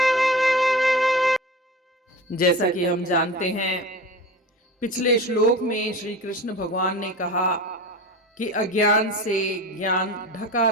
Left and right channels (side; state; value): both; normal; correlation 0.32